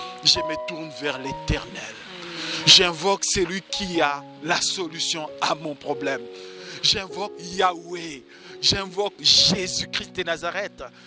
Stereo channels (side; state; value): both; identical; correlation 1.00